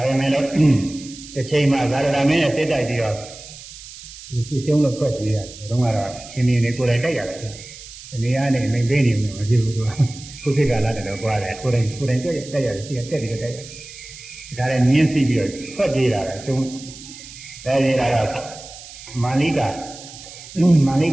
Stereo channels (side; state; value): right; noise; hiss, 16 dB below the sound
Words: ပေမဲ့လည်းတစ်ချိန်မှာသာရဏမင်းနဲ့စိတ်တိုက်ပြီးတော့ဒီရှုံးလို့ဖွက်ပြေးရတယ်ဘုရားကတော့ရှင်နေကိုယ်တိုင်တိုက်ရတယ်ဒီနေရာနဲ့မင်းပေးနေမှာမဖြစ်ဘူးသူကခုခေတ်ကလာတယ်တော့ကြွားတယ်ကိုယ်တိုင်တိုက်ရတယ်ရှိကတက်ပြီးတော့တိုက်ရတယ်ဒါလည်းမြင်းစီပြီးတော့ဖွက်ပြေးတာလေဆုံးအဲဒီကတော့မာနိက